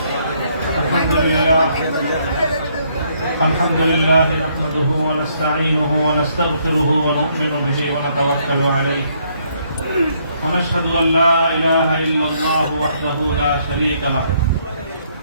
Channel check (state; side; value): inverted; both; correlation -0.70